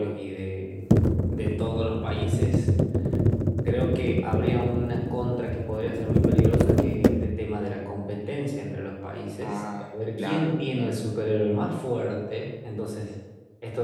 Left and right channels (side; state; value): both; identical; correlation 1.00